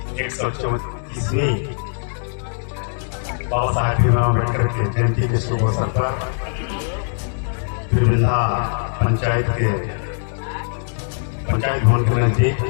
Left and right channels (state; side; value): silent; right; digital silence